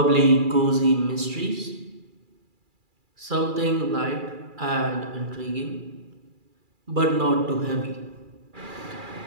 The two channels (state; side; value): late; left; 2.4 ms